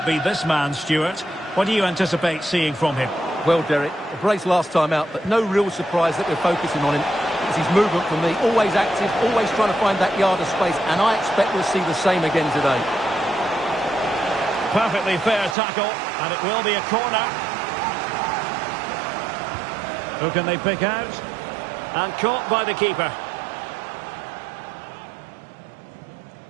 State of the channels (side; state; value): left; drops out; at 15.6 s